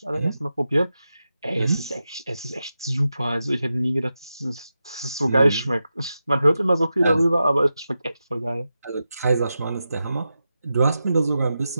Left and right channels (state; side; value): inverted; both; correlation -0.90